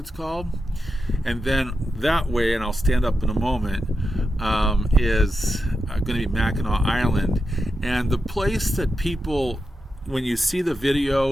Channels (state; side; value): normal; both; correlation 0.88